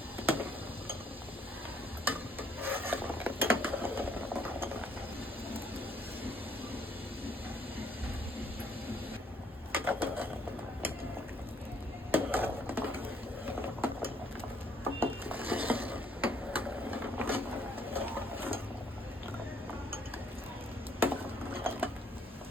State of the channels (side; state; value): both; normal; correlation 0.66